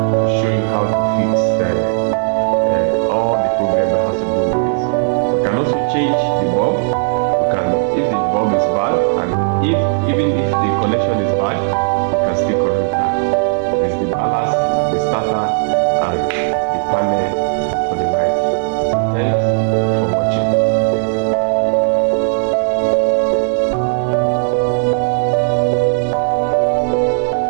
show you how to fix all the problem that has to do with this. We can also change the bulb. We can, if the bulb is bad, and even if the connection is bad,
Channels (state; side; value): silent; left; digital silence